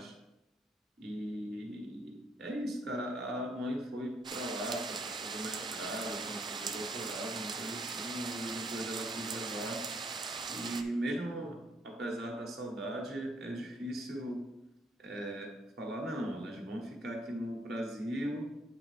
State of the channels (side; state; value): both; normal; correlation 0.68